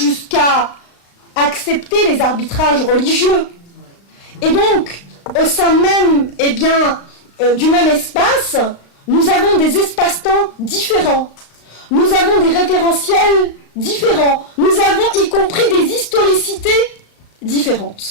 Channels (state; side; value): late; right; 35 ms